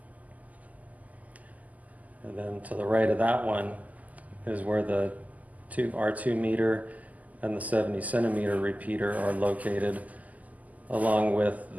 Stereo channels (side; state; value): left; late; 0.077 ms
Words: And then to the right of that one is where the our 2 meter and the 70 centimeter repeater are located, along with